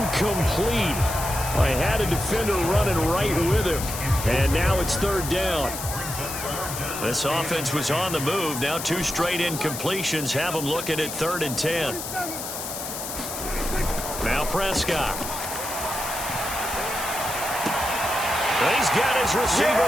I had a defender running right with him. And now it's 3rd down. This offense was on the move. Now 2 straight incompletions have them looking at 3rd and 10. Now Prescott. He's got his receiver,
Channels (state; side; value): noise; left; hiss, 7 dB below the sound